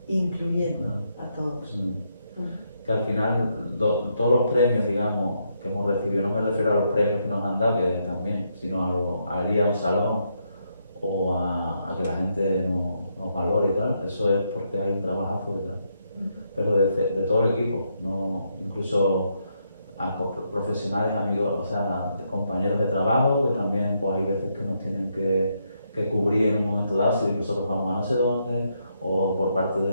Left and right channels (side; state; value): both; inverted; correlation -0.78